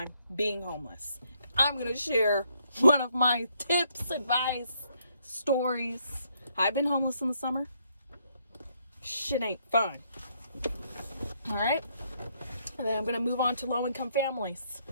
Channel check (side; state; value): both; inverted; correlation -0.72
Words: being homeless? I'm going to share one of my tips, advice, stories. I've been homeless in the summer. Shit ain't fun. All right. And then I'm going to move on to low-income families.